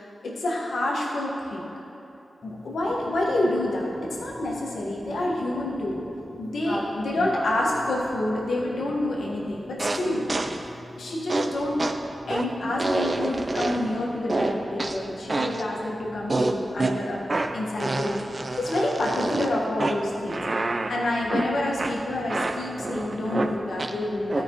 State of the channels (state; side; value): normal; both; correlation 0.90